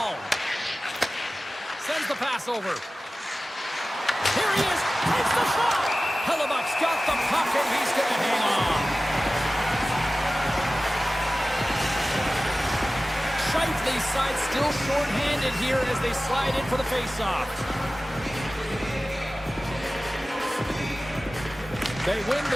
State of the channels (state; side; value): normal; both; correlation 0.96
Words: Sends the pass over. Here he is. Takes the shot. Hellebuck's got the puck and he's going to hang on. Shifley's side still short-handed here as they slide in for the face-off. They win